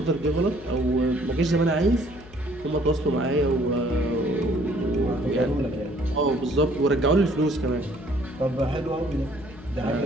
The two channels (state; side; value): noise; left; hum, 20 dB below the sound